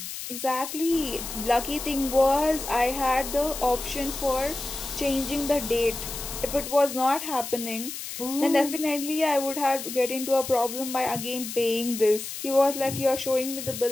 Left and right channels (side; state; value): left; noise; hiss, 8 dB below the sound